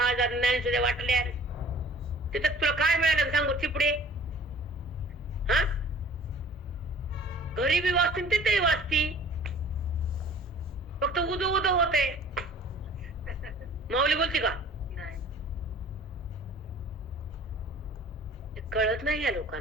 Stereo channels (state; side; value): normal; both; correlation 0.48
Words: नाही सुद्धा वाटले. तिथं तुला काय मिळालं सांगू चिपडे. हा गरीबी वाचती तिथेही वाचती, फक्त उदो होते. माऊली बोलते का नाही. ते कळत नाही या